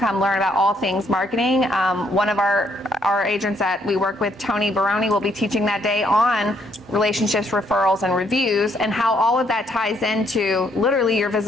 learn about all things marketing. One of our agents that we work with, Tony Baroni, will be teaching that day on relationships, referrals, and reviews, and how all of that ties into literally your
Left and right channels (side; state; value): both; normal; correlation 0.71